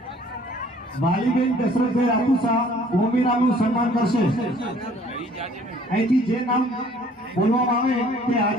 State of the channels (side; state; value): both; normal; correlation 0.56